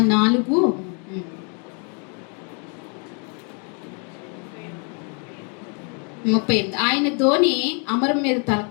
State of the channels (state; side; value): quieter; right; 37.9 dB